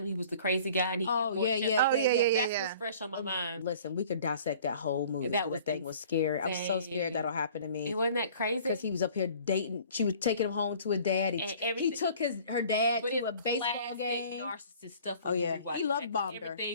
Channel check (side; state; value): both; inverted; correlation -0.50